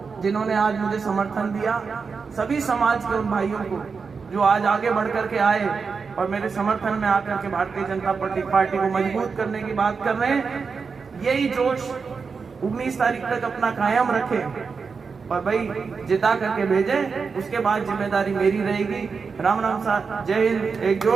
जिन्होंने आज मुझे समर्थन दिया, सभी समाज के उन भाइयों को जो आज आगे बढ़ करके आए और मेरे समर्थन में आकर के भारतीय जनता पार्टी को मजबूत करने की बात कर रहे हैं। यही जोश 19 तारीख तक अपना कायम रखें और भाई जिता करके भेजें। उसके बाद जिम्मेदारी मेरी रहेगी। राम राम साथ, जय हिंद। एक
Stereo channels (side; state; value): left; quieter; 5.2 dB